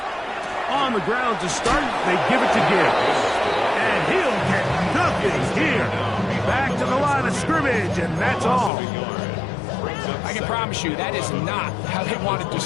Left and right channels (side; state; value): right; drops out; at 8.7 s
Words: On the ground to start, they give it to Gibbs. And he'll get nothing here. Back to the line of scrimmage, and that's all. I can promise you that is not how they wanted to